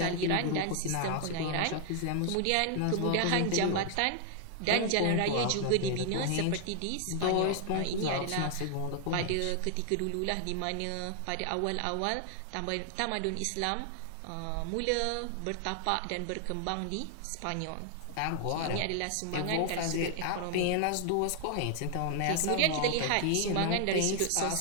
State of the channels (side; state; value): both; different; correlation 0.00